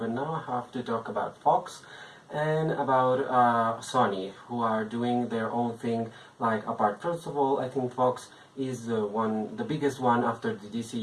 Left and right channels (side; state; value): both; identical; correlation 1.00